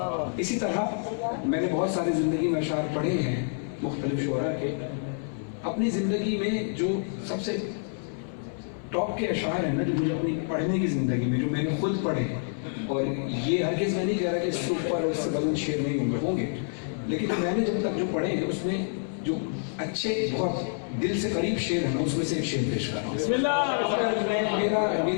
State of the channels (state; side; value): silent; right; 60 dB below the other